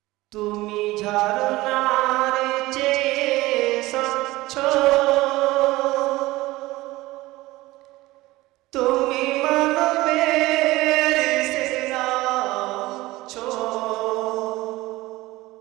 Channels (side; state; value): left; quieter; 19.0 dB